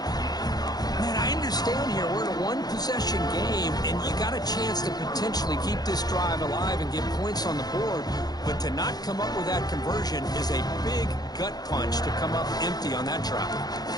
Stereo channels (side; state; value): right; late; 0.19 ms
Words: Man, I understand here we're in a one-possession game, and you got a chance to potentially keep this drive alive and get points on the board, but to not come up with that conversion is a big gut punch to come up empty on that drive.